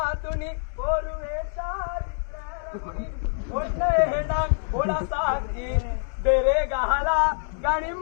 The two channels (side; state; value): right; silent; digital silence